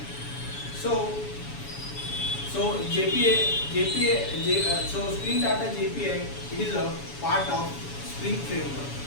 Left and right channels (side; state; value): right; late; 7.1 ms